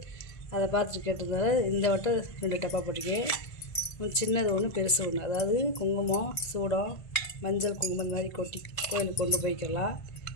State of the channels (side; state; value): right; late; 1.5 ms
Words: அதை பார்த்துட்டு கேட்டதால இந்த வட்டம் 2 டப்பா போட்டிருக்கேன். சின்னது ஒன்று, பெருசு ஒன்று. அதாவது குங்குமம், சூடம், மஞ்சள் குங்குமம் இந்த மாதிரி கொட்டி கோயிலுக்கு கொண்டு போய்க்கலாம்.